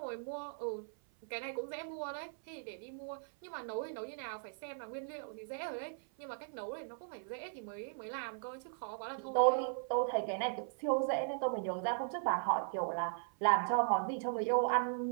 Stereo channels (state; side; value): silent; left; 52 dB below the other